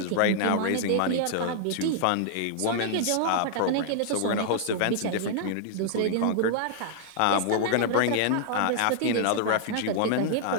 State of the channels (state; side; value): different; both; correlation -0.01